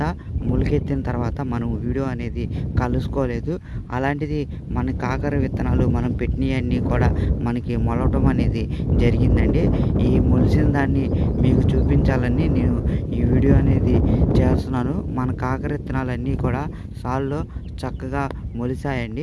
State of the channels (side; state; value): both; identical; correlation 1.00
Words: మొలకెత్తిన తర్వాత మనం వీడియో అనేది కలుసుకోలేదు. అలాంటిది మన కాకర విత్తనాలు మనం పెట్టినవన్నీ కూడా మనకి మొలవటం అనేది జరిగిందండి. ఈ మొలిచిన దాన్ని మీకు చూపించాలని నేను ఈ వీడియో అనేది చేస్తున్నాను. మన కాకర విత్తనాలన్నీ కూడా సాల్లో చక్కగా